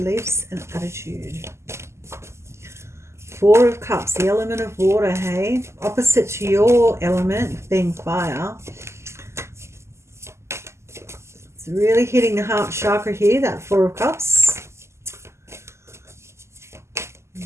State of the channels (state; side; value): late; left; 0.13 ms